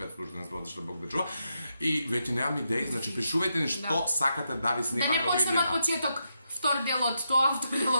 слушани збор, што Бог да чува. И веќе немам идеи, значи пишувајте ни што сакате да ви Да снимаме не овие почнеме од видеа. почеток. Втор дел од тоа, втор дел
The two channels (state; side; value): inverted; both; correlation -0.83